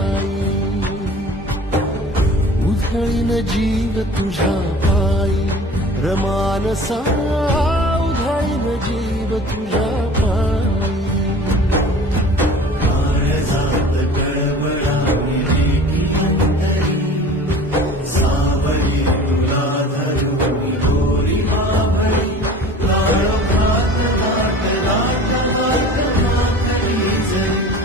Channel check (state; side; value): normal; both; correlation 0.42